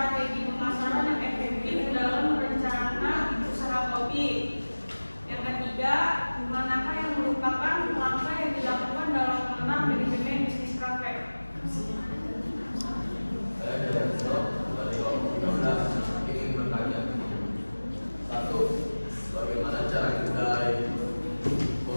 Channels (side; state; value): both; inverted; correlation -1.00